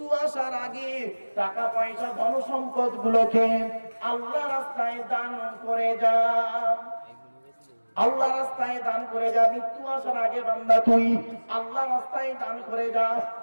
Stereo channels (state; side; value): inverted; both; correlation -1.00